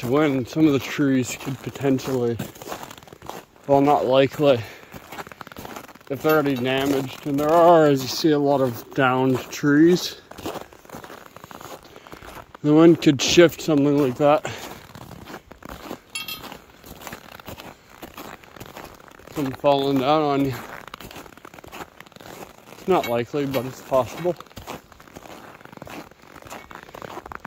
of wind, some of the trees could potentially, well, not likely, if they're already damaged, and there are, as you see, a lot of downed trees. The wind could shift something like that. Come falling down on you. It's not likely, but it's possible.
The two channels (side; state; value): both; identical; correlation 1.00